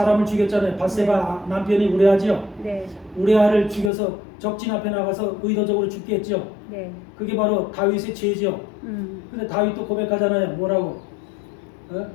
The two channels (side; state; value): right; drops out; at 3.9 s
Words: 죽였잖아요. 밧세바 남편이 우리아지요. 네, 우리아를 죽여서 적진 앞에 나가서 의도적으로 죽게 했죠. 네, 그게 바로 다윗의 죄죠. 근데 다윗도 고백하잖아요. 뭐라고?